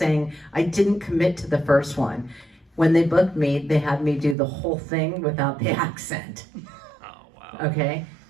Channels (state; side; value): drops out; left; at 4.4 s